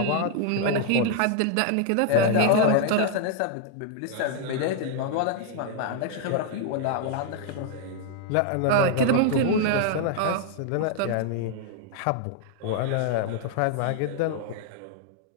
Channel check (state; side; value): different; both; correlation 0.00